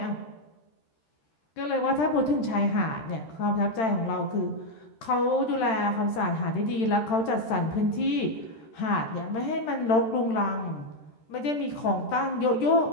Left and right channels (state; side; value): late; right; 13 ms